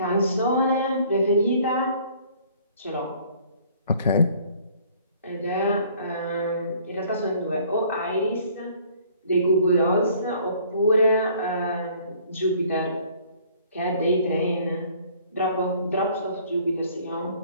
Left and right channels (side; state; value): both; inverted; correlation -0.56